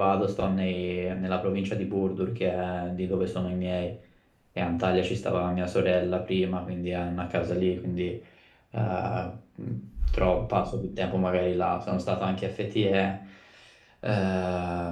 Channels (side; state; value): both; identical; correlation 1.00